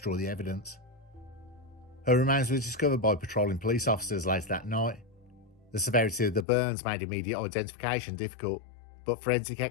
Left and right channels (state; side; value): drops out; right; at 6.5 s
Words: the evidence. Her remains were discovered by patrolling police officers later that night. The severity of the burns made immediate identification difficult, but forensic